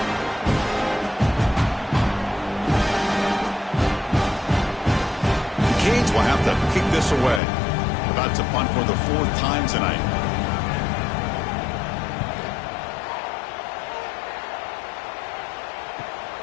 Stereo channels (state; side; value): drops out; right; at 7.4 s